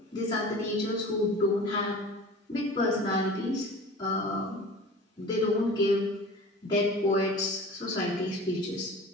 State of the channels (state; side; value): normal; both; correlation 0.40